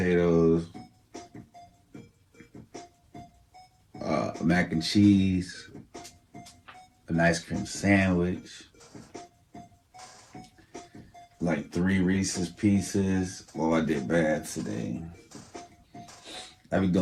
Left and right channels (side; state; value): both; identical; correlation 1.00